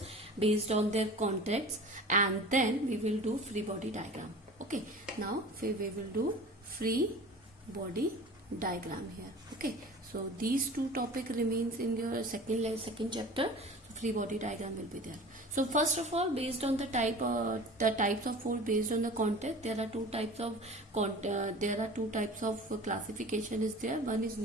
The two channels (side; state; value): both; normal; correlation 0.39